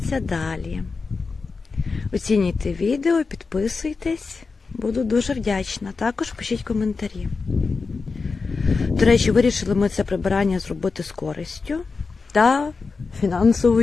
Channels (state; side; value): quieter; right; 4.5 dB